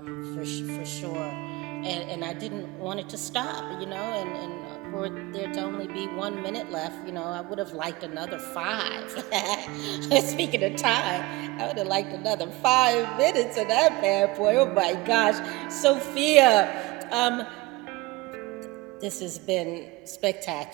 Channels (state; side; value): quieter; left; 21.4 dB